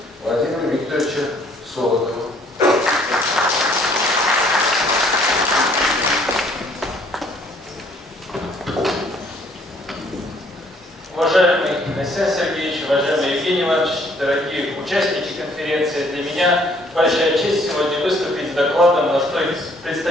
Владимиру Викторовичу Солодову. Уважаемый Александр Сергеевич, уважаемый Евгений Иванович, дорогие участники конференции, для меня большая честь сегодня выступить с докладом на столь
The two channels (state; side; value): normal; both; correlation 0.62